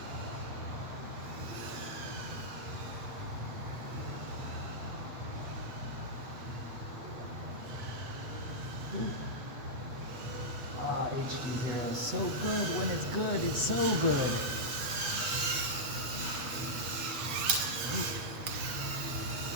Ah, HD Hero, so good. When it's good, it's so good.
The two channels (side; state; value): left; late; 8.0 ms